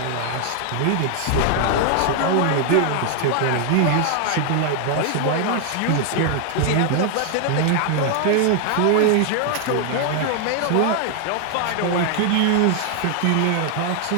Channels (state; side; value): different; both; correlation 0.00